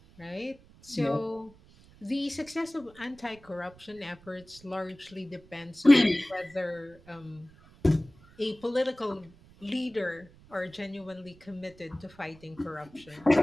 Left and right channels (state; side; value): noise; right; rumble, 25 dB below the sound